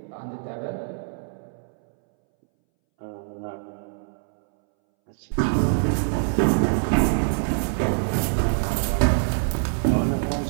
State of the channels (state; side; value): silent; left; 62 dB below the other